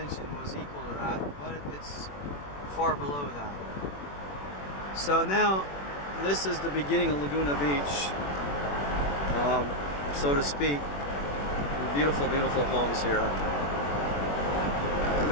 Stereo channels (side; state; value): right; late; 21 ms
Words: was equal to that, but it's far below that. So now, this is the beginning of Laguna Beach, so to speak. Beautiful, beautiful homes here.